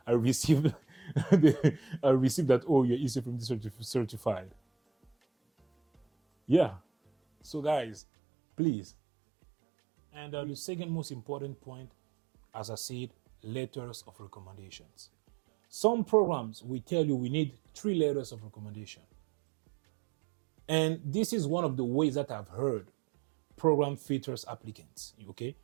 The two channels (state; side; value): drops out; left; at 8.0 s